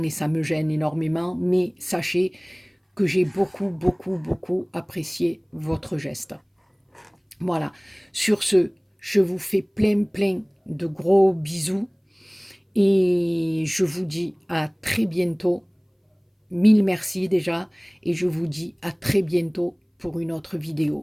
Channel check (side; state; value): both; identical; correlation 1.00